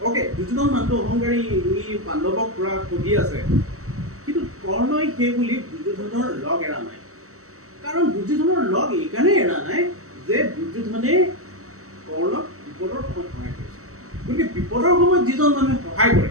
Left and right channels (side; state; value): left; late; 0.64 ms